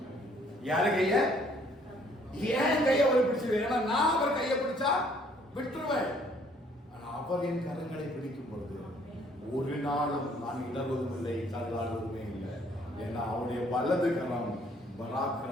யாரு கைய? ஏன் கையை அவர் பிடிச்சு? ஏன்னா நான் அவர் கையை பிடிச்சா விட்டுருவேன். ஆனா அவர் என் கரங்களை பிடிக்கும் பொழுது ஒரு நாளும் நான் இடர்வதும் இல்லை, தள்ளாடுவதுமே இல்லை. ஏன்னா அவருடைய வலது கரம்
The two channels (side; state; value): both; normal; correlation 0.62